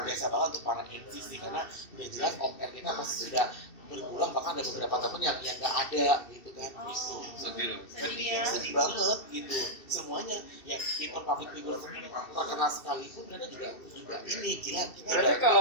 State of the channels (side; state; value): right; late; 2.7 ms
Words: biasa banget untuk para MC sih karena udah jelas off air kita pasti sudah berkurang, bahkan ada beberapa temen yang nggak ada gitu kan. Itu sedih banget gitu semuanya ya. Even public figure terkenal sekalipun mereka juga ini gila kita berarti